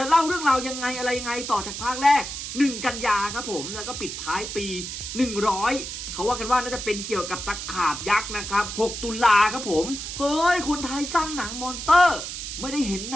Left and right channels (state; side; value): noise; right; hiss, 7 dB below the sound